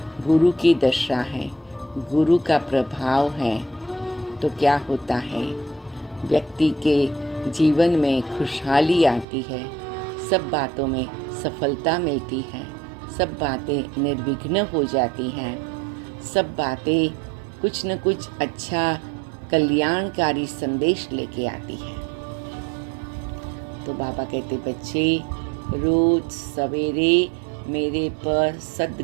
गुरु की दशा है, गुरु का प्रभाव है, तो क्या होता है? व्यक्ति के जीवन में खुशहाली आती है, सब बातों में सफलता मिलती है, सब बातें निर्विघ्न हो जाती हैं, सब बातें कुछ न कुछ अच्छा कल्याणकारी संदेश लेके आती है। तो बाबा कहते बच्चे रोज सवेरे मेरे पर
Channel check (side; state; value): left; drops out; at 9.2 s